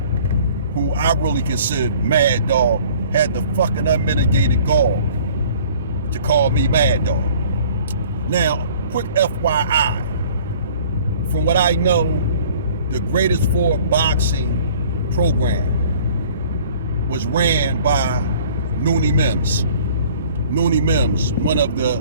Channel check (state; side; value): inverted; both; correlation -0.52